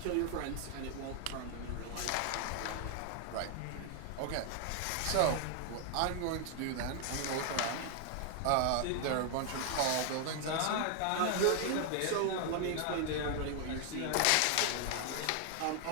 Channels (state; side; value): different; both; correlation 0.00